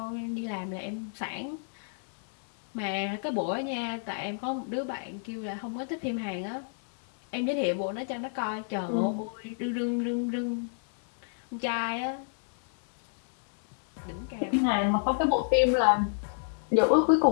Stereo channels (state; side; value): silent; right; digital silence